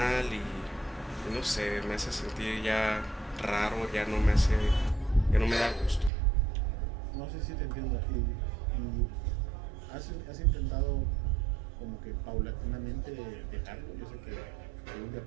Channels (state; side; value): drops out; left; at 6.1 s